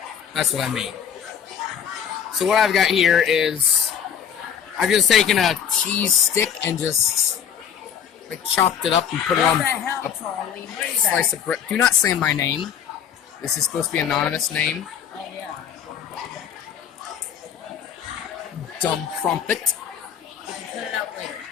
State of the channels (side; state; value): right; quieter; 8.5 dB